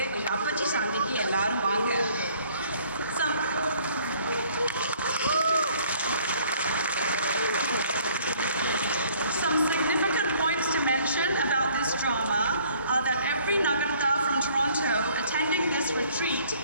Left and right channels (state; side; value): inverted; both; correlation -0.58